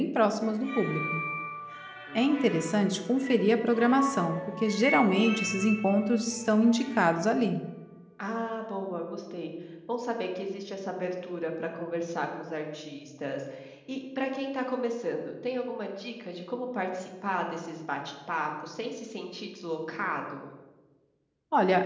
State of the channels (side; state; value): both; identical; correlation 1.00